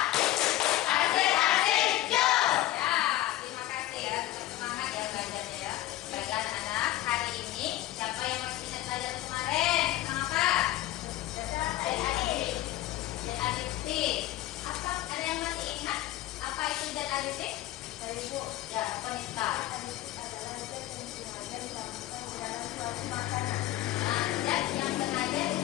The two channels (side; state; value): right; quieter; 15.2 dB